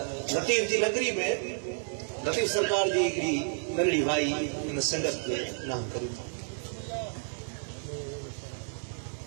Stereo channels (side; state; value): left; silent; 57 dB below the other